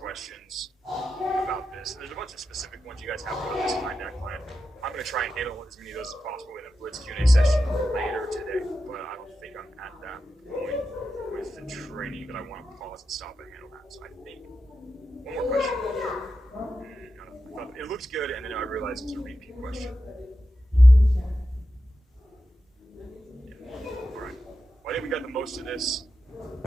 about this. There's a bunch of specific ones you guys have about this client, that client. I'm going to try and handle as many of those as possible in a Blitz Q&A session later today, but I don't think I'm at that point with the training that I want to pause and stop and handle that. So I think one more question. It looks good, and then I realized it's a repeat question. All right. Well, I think we got the most of this.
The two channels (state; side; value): normal; both; correlation 0.90